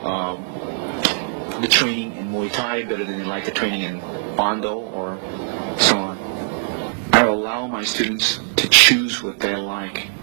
the training in Muay Thai better than they like the training in Bondo or so on? I allow my students to choose what they like,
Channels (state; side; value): silent; left; 65 dB below the other